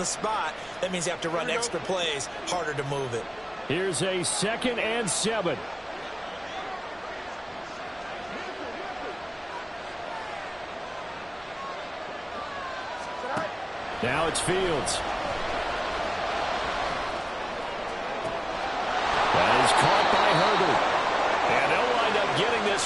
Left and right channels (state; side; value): noise; right; hum, 30 dB below the sound